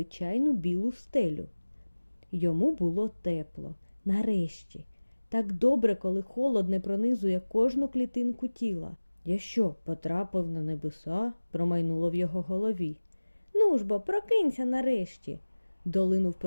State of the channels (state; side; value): inverted; both; correlation -1.00